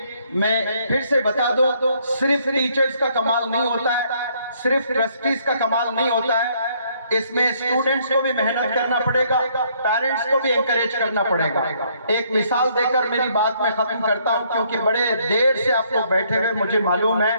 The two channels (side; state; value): both; inverted; correlation -0.67